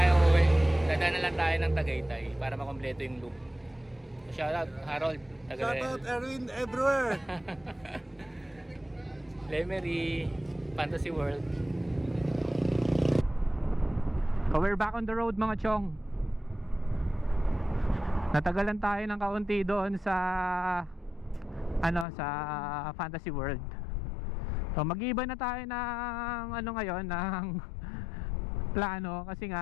uwi. Dadaan na lang tayo ng Tagaytay para makompleto yung loop. Shoutout Harold. Shoutout Erwin everywhere. Lemery, Fantasy World. So we're back on the road mga chong. Natagalan tayo ng kaunti doon sa sa Fantasy World. So mag-iba na tayo ng ngayon ng plano kasi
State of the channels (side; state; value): right; drops out; at 22.1 s